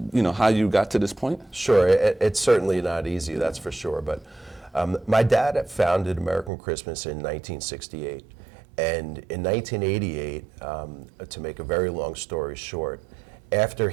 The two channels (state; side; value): drops out; left; at 6.5 s